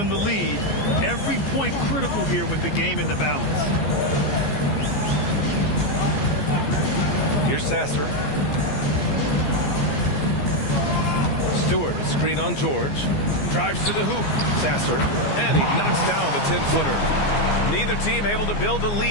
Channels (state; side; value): late; right; 14 ms